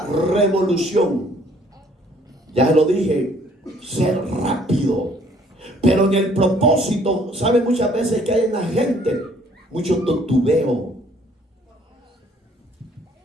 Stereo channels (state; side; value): normal; both; correlation 0.60